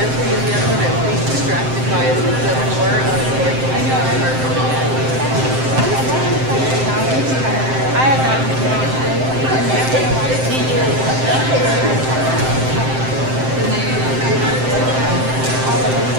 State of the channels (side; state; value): left; late; 7.7 ms